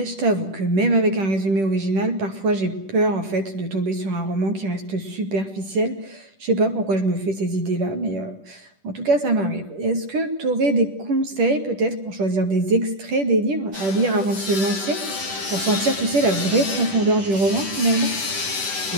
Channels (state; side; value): late; left; 10 ms